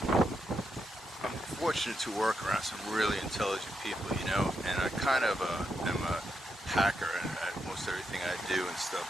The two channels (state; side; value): normal; both; correlation 0.82